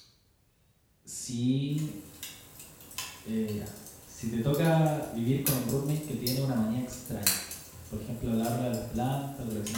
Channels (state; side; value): identical; both; correlation 1.00